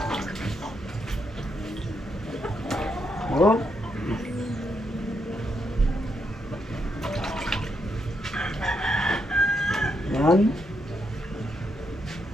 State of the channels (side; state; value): both; normal; correlation 0.80